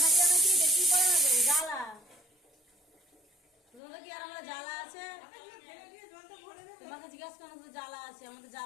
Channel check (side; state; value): right; drops out; at 3.8 s